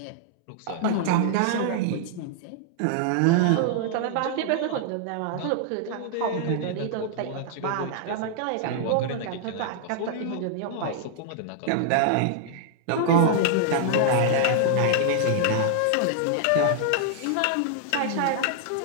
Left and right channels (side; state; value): both; different; correlation -0.01